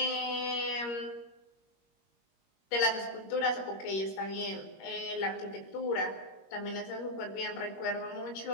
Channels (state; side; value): late; right; 21 ms